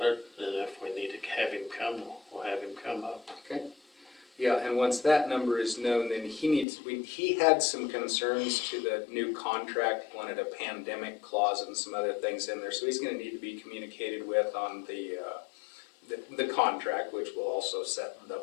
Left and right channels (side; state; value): right; drops out; at 6.7 s